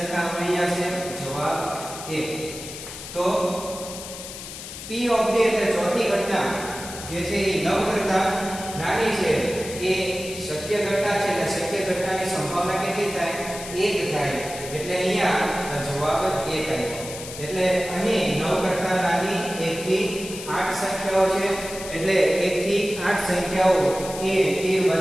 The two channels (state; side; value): noise; left; hiss, 11 dB below the sound